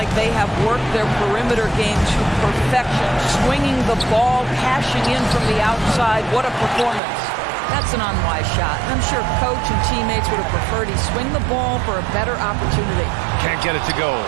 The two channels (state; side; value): drops out; left; at 7.0 s